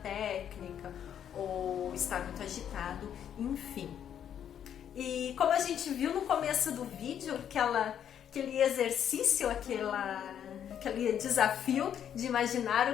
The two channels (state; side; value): quieter; right; 9.3 dB